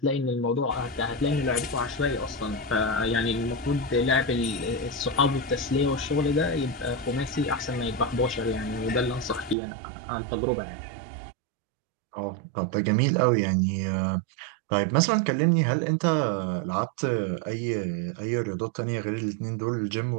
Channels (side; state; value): left; drops out; at 9.6 s